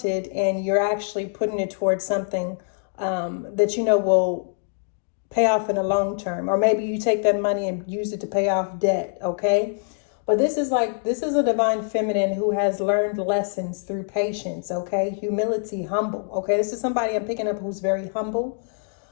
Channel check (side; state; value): right; silent; digital silence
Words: and you're actually putting it towards something that will pay off in the long term. Or maybe you take that money and use it to pay off debt, okay? But this is a divine feminine who has learned lessons through patience, okay? Humility, humble, okay? This is somebody I'm picking up who's very humble,